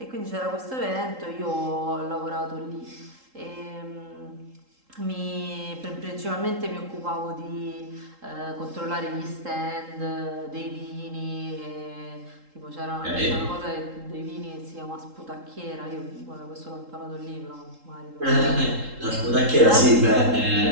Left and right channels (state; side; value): late; left; 3.8 ms